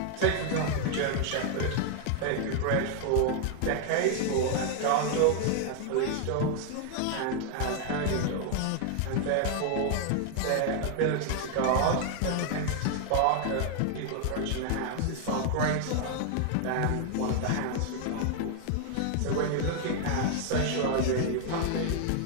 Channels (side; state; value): both; different; correlation 0.00